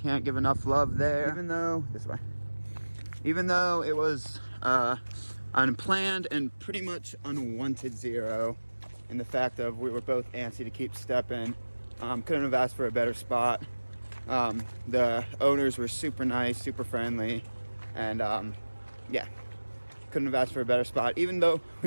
give enough love there. Even though it was unplanned and pretty much unwanted zero, in the fact of we were both antsy to keep stepping. Couldn't have asked for a better spot. The owners were super nice, super friendly, and yeah, couldn't have asked for a better spot, even though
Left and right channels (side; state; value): both; inverted; correlation -1.00